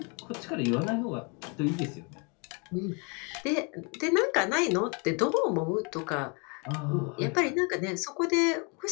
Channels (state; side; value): quieter; right; 33.2 dB